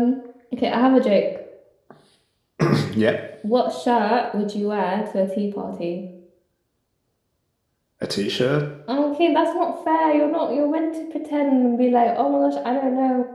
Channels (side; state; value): both; identical; correlation 1.00